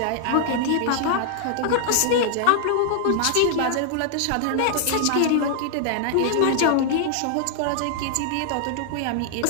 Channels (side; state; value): both; different; correlation 0.00